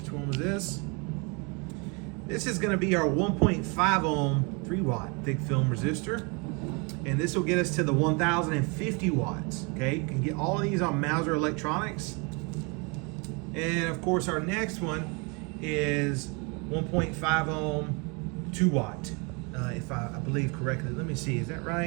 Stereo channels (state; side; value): quieter; left; 31.5 dB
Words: one was this? This is going to be our 1.5 ohm 3 watt thick film resistor, And this will get us to the 1050 watts. Okay, you can get all of these on Mouser Electronics. And of course, our next one is 1.5 ohm, 2 watt. If I believe correctly. Let me see, is that